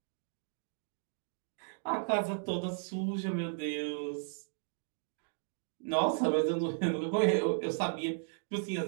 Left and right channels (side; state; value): left; silent; digital silence